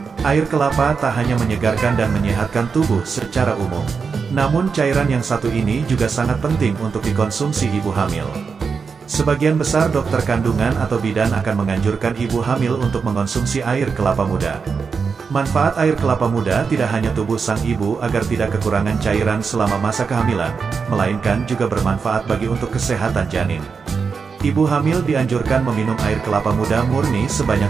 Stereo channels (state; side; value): quieter; left; 5.5 dB